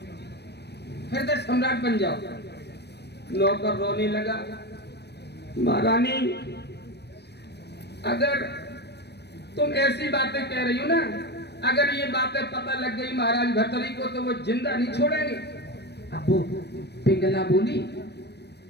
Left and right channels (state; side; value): late; right; 0.49 ms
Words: हृदय सम्राट बन जाओ। नौकर रोने लगा, महारानी अगर तुम ऐसी बातें कह रही हो ना, अगर ये बातें पता लग गई महाराज भर्तरी को तो वो जिंदा नहीं छोड़ेंगे। अब वो पिंगला बोली,